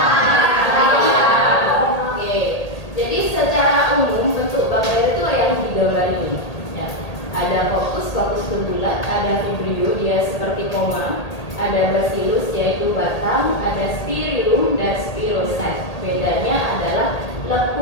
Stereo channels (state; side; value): late; right; 2.0 ms